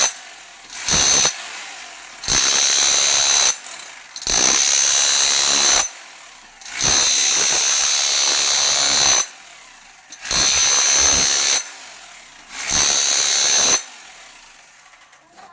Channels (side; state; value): both; identical; correlation 1.00